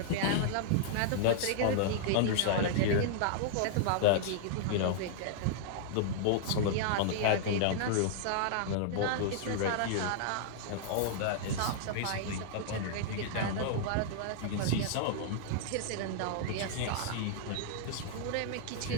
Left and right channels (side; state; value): both; different; correlation -0.01